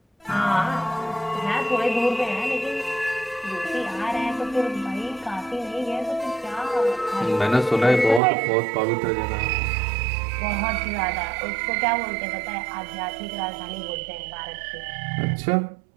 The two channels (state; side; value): drops out; left; at 8.2 s